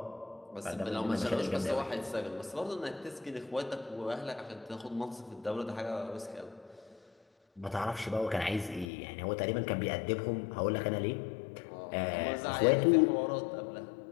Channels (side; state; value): right; drops out; at 8.8 s